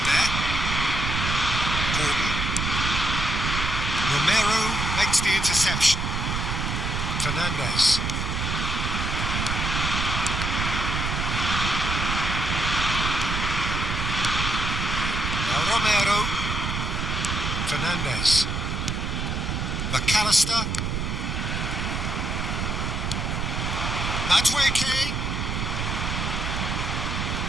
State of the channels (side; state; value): right; noise; rumble, 1 dB below the sound